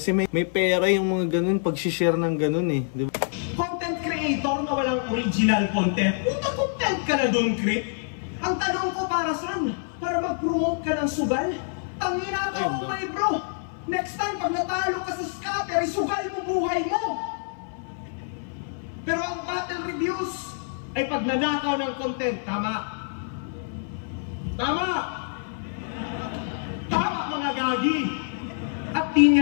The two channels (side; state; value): right; silent; 57 dB below the other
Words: may pera yung mga ganun, pag-share ng ganun eh. Diba? Content creator na walang original content. Puta, content ka na dun, Creep. Ang tanong ko para saan? Para mag-promote ka ng sugal? Tangina ka ako may bro! Next time, pag natalo ka sa scatter, isugal mo buhay mo! Pero ang battle reviews ay pag nanakaw ng content, tama? Tama! Tama mga gagi! At di